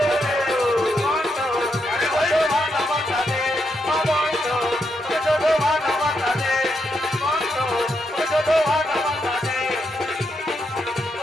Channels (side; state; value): both; normal; correlation 0.81